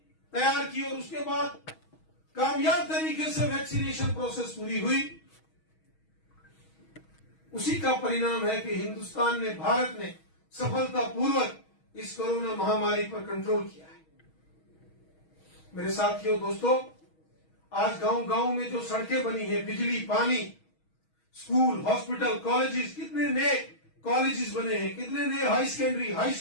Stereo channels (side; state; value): right; late; 6.3 ms